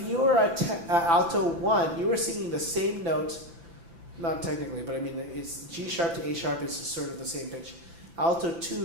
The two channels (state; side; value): late; left; 5.9 ms